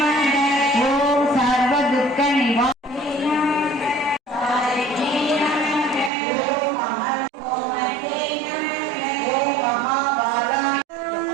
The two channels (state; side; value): drops out; left; at 6.1 s